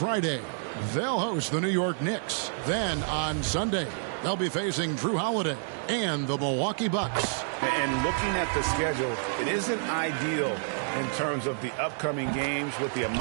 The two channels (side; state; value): left; silent; digital silence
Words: they'll host the New York Knicks. Then on Sunday, they'll be facing Drew Holiday and the Milwaukee Bucks. And looking at the schedule, it isn't ideal in terms of the upcoming games with the